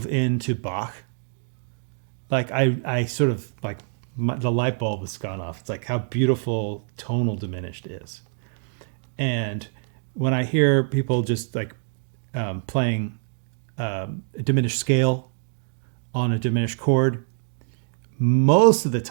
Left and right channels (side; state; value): left; silent; digital silence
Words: into Bach, I sort of the light bulb has gone off. It's how beautiful tonal diminished is. And when I hear people just playing a diminished scale on a diminished chord, most of the